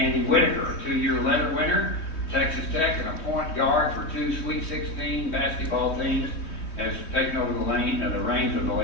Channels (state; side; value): late; right; 3.2 ms